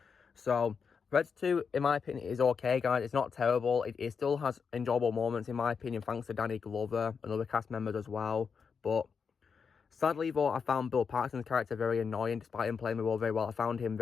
So, Predator 2, in my opinion, is okay, guys. It's not terrible. It still has enjoyable moments, in my opinion, thanks to Danny Glover and other cast members as well. But sadly, though, I found Bill Paxton's character very annoying, despite him playing the role very well. I found him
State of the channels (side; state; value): right; quieter; 6.0 dB